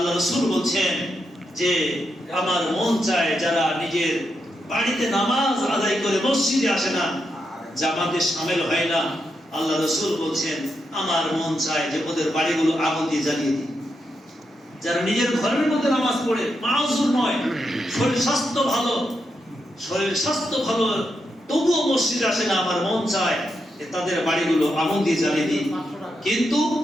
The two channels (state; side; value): normal; both; correlation 0.84